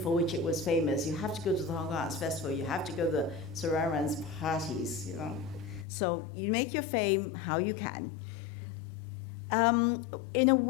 which it was famous. You have to go to the Hong Kong Arts Festival, you have to go to the Sir Aaron's parties, So you make your fame how you can. In a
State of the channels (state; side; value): drops out; right; at 5.9 s